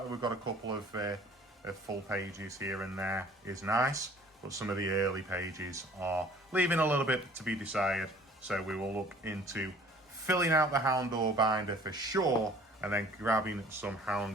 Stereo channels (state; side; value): normal; both; correlation 0.52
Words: that we've got a couple of full pages here and there is nice. But some of the early pages are leaving a little bit to be desired. So we will look into filling out the Houndour binder for sure, and then grabbing some